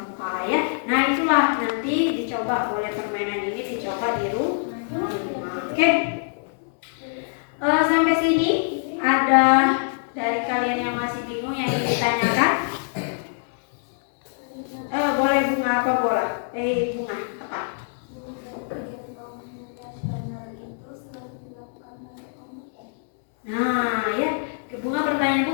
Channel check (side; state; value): right; silent; 62 dB below the other